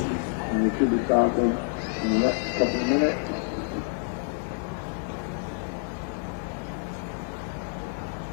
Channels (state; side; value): silent; right; 60 dB below the other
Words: Should be starting in the next couple of minutes.